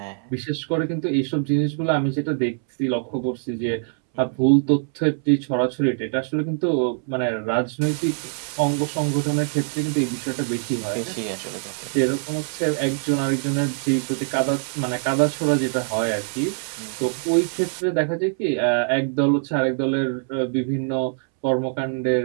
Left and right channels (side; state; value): left; silent; 63 dB below the other